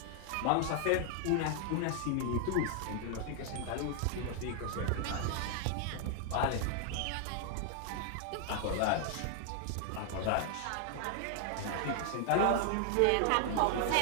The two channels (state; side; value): different; both; correlation 0.00